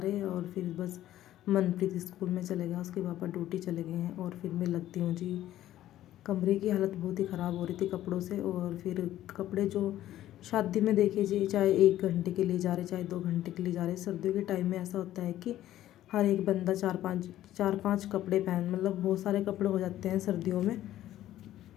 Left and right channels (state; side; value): quieter; right; 13.4 dB